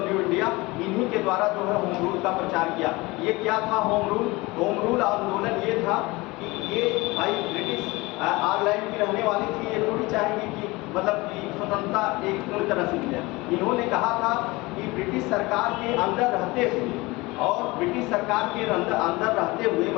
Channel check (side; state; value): right; quieter; 22.6 dB